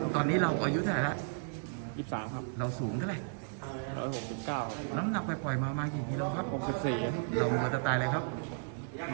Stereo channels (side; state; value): left; silent; digital silence